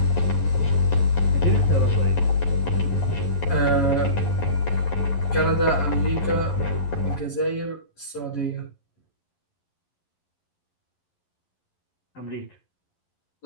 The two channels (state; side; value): late; right; 11 ms